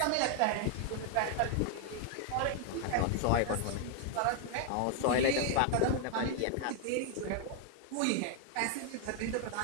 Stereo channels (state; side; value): different; both; correlation 0.00